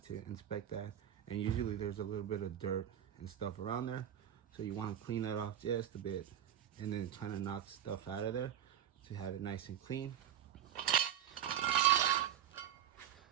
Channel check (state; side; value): quieter; left; 10.1 dB